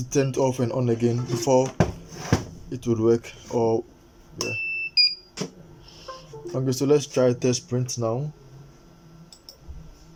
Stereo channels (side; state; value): both; identical; correlation 1.00